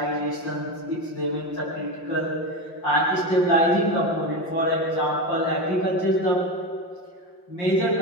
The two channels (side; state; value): right; late; 5.8 ms